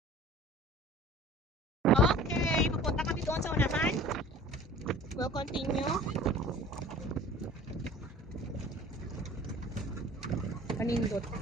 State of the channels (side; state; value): both; normal; correlation 0.45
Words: Okay, pupunta kami doon sa unahan. We'll continue. Panindot.